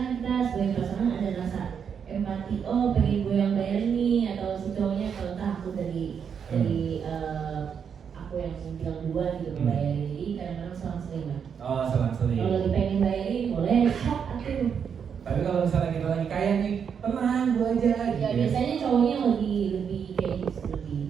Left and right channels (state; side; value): quieter; left; 7.2 dB